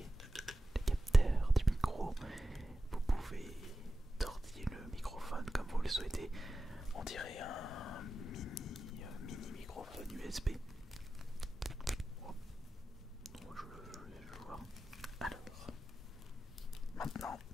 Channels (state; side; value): normal; both; correlation 0.93